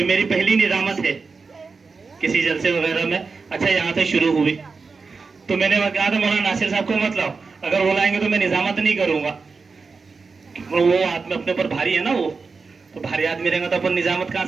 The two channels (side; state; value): left; quieter; 4.6 dB